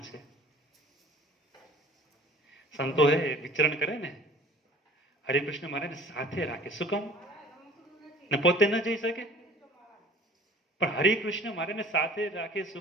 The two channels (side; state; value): both; normal; correlation 0.47